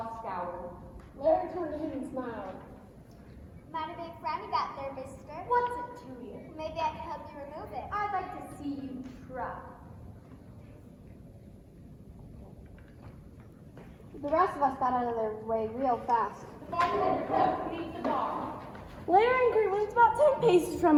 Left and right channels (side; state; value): both; identical; correlation 1.00